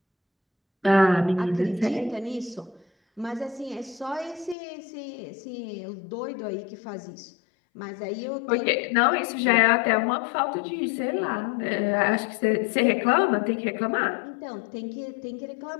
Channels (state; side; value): drops out; right; at 4.5 s